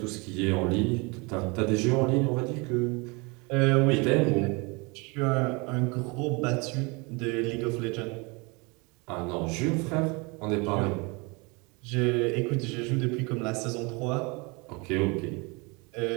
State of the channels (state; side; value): quieter; left; 28.5 dB